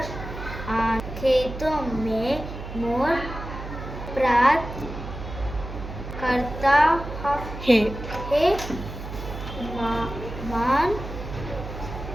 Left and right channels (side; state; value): right; noise; hum, 9 dB below the sound